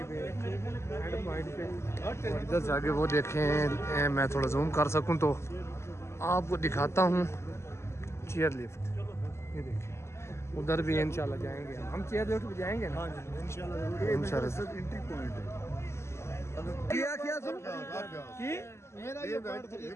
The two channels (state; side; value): late; right; 0.13 ms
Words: पे एंड पॉइंट पे। इधर से आगे वो देखें, मैं थोड़ा जूम कर सकूं तो आपको दिखाता हूं चेयर लिफ्ट। ये देखिए उधर भी इंशाल्लाह जाएंगे हम चेयर लिफ्ट पे जाएंगे ना इंशाल्लाह। एंट्री पॉइंट है। क्या क्या सुन मेरा ये पॉइंट फ्री